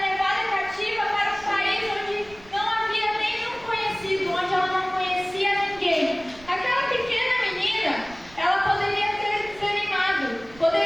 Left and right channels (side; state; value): right; noise; rumble, 22 dB below the sound